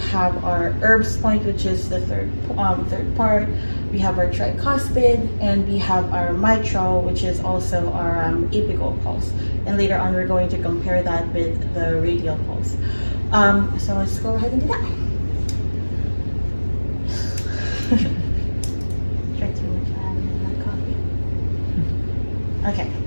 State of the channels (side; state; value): both; inverted; correlation -1.00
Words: have our herbs point, which is the third part. We have our tricuspid, and we have our mitral, which is also our apical pulse. And later on, we're going to compare that with the radial pulse. So let's go ahead and do that. Drank too much, I haven't had my coffee. Okay.